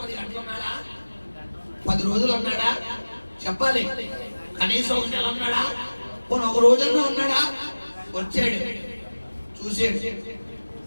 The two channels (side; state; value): both; inverted; correlation -1.00